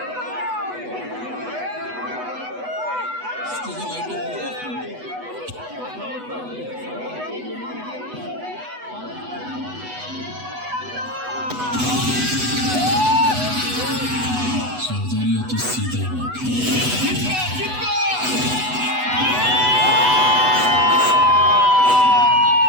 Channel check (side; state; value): left; late; 8.1 ms